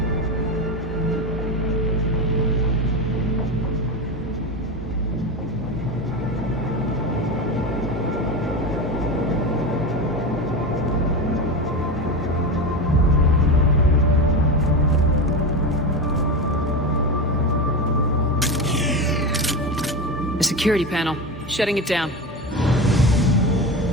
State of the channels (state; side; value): normal; both; correlation 0.20